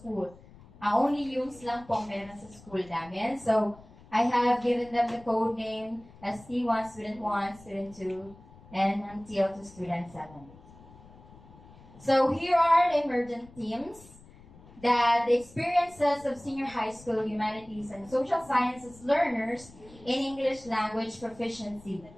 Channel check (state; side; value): noise; left; rumble, 22 dB below the sound